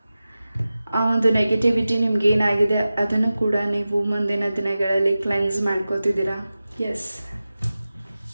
ಆ ಒಂದು ನೆಗೆಟಿವಿಟಿ ನಿಮ್ಗೆ ಏನಾಗಿದೆ ಅದನ್ನು ಕೂಡ ನೀವು ಮುಂದಿನ ದಿನಗಳಲ್ಲಿ ಕ್ಲೆನ್ಸ್ ಮಾಡ್ಕೋತಿದ್ದೀರಾ. ಎಸ್,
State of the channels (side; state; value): both; inverted; correlation -0.95